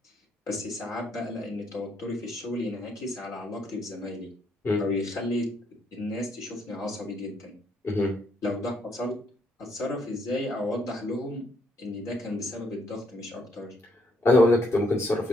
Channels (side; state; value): both; normal; correlation 0.72